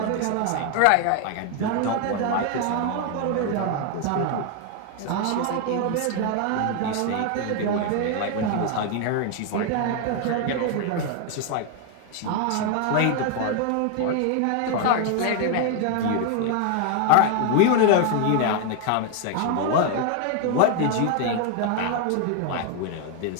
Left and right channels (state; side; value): different; both; correlation 0.01